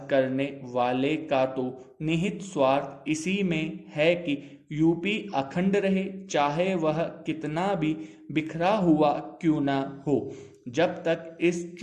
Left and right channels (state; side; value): identical; both; correlation 1.00